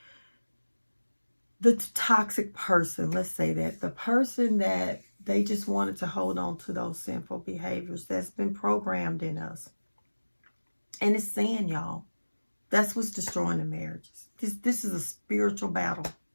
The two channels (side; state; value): both; inverted; correlation -1.00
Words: the toxic person, let's say that, the person that they just wanted to hold on to those sinful behaviors that's been programmed in us. And it's sin, y'all. That's what's destroying the marriages. This is a spiritual battle.